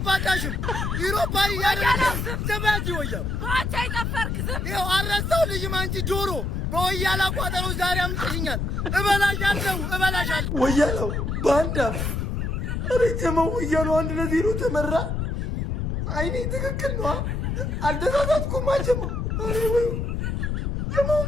ዩሮፓ ያደረገ ዘባጂ ወያላ ባቻ ይጠፈርክ ዝም ይኸው አረሳው ልጅም አንቺ ዶሮ በወያላ ቋጠሮ ዛሬ አምጥሽኛል። እበላሻለሁ ወያላው ባንዳ ረጀመው ወያላው 1-0 ተመራ። አይኔ ትክክል ነው አልተሳሳትኩም። አጀሙ አሬ ወይ ጀመው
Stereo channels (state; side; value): noise; left; rumble, 1 dB below the sound